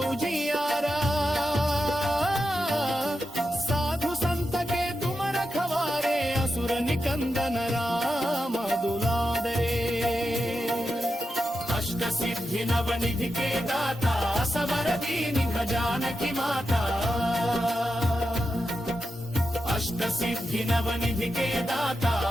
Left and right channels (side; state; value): both; normal; correlation 0.89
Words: उजियारा साधु संत के तुम रखवारे असुर निकंदन राम दुलारे अष्ट सिद्धि नवनिधि के दाता सवर दीनि जानकी माता अष्ट सिद्धि नवनिधि के दाता